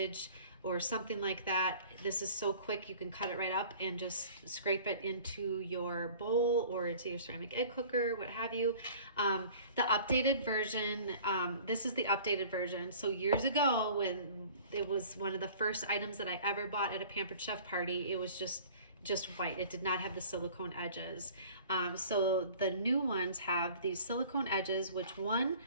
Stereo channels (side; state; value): both; inverted; correlation -0.47